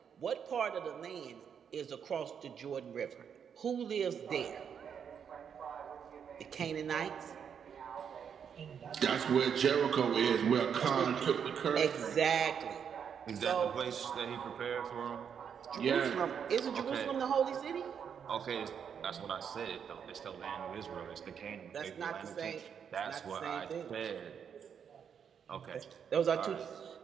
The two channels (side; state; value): left; quieter; 7.6 dB